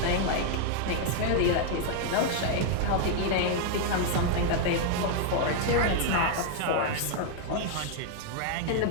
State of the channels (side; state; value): both; different; correlation 0.00